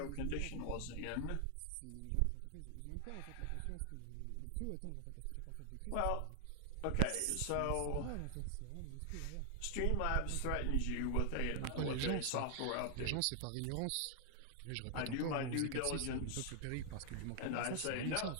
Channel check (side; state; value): both; different; correlation 0.00